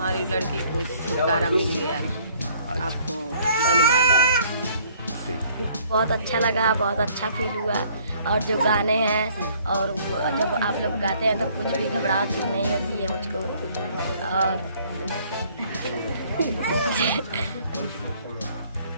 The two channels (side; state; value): both; inverted; correlation -0.60